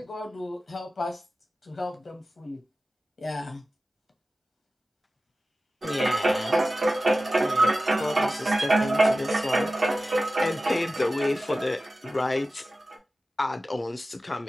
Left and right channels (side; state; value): both; normal; correlation 0.95